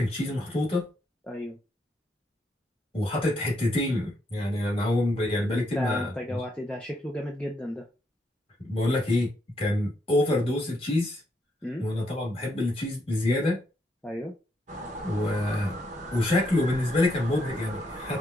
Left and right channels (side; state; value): both; normal; correlation 0.77